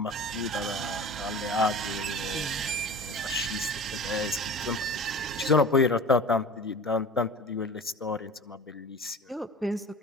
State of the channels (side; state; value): both; normal; correlation 0.37